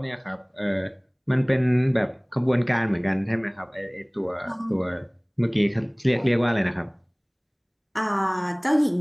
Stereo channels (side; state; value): both; identical; correlation 1.00